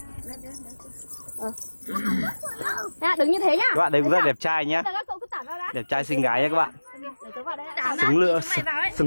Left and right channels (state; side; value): inverted; both; correlation -1.00